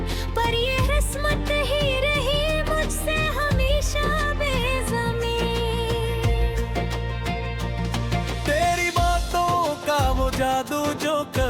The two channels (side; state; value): both; identical; correlation 1.00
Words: पर ये किस्मत ही रही मुझसे जादू जो